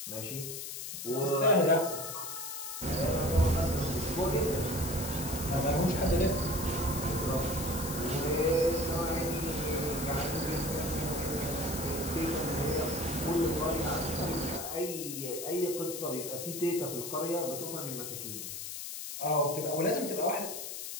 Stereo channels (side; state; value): left; noise; hiss, 7 dB below the sound